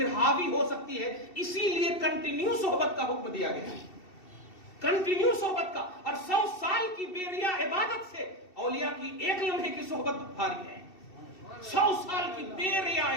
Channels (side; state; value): right; late; 2.7 ms